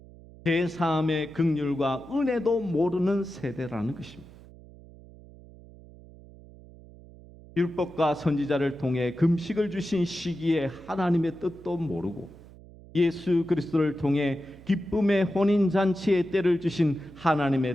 제사함의 긍휼과 은혜도 모르는 세대라는 것입니다. 율법과 선지자를 통해 금식을 주신 시기에 하나님의 뜻도 모르고 예수 그리스도를 통해 기쁨의 혼인 잔치의 때를 주신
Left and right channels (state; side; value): noise; right; hum, 21 dB below the sound